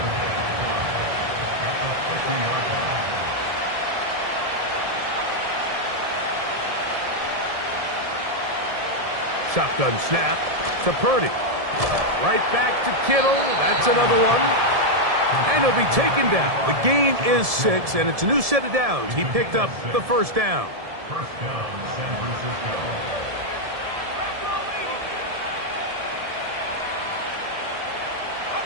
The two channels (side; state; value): left; late; 1.7 ms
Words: Shotgun snap to Purdy. Right back to Kittle. That's another one. And he'll be taken down. The gain is 6, and it's a new set of downs. He picked up the first down. First down, San Francisco.